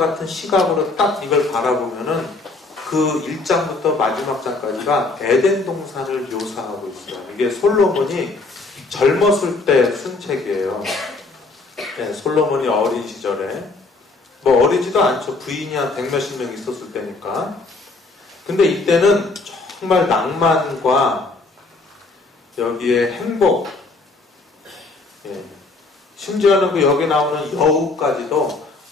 시각으로 딱 이걸 바라보면은 그 1장부터 마지막 장까지가 에덴 동산을 묘사하고 있어요. 이게 솔로몬이 젊었을 때 쓴 책이에요. 네, 솔로몬이 어린 시절에 뭐 어리지도 않죠. 부인이 한 100몇십 명 있었을 때니까. 근데 이때는 정말 낭만과 여기에 행복, 예. 심지어는 그 여기 나오는 여우까지도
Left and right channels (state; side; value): quieter; right; 3.5 dB